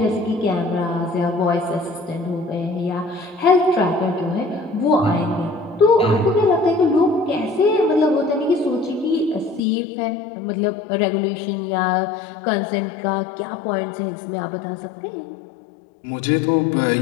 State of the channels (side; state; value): right; drops out; at 9.6 s